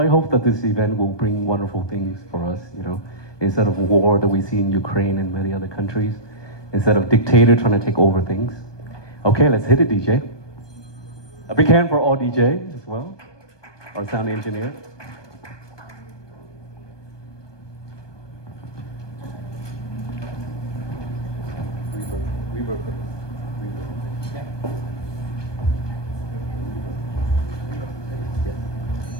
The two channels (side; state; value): right; late; 1.2 ms